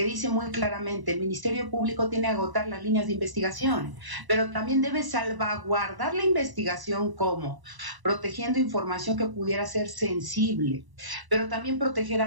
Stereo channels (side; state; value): left; late; 1.0 ms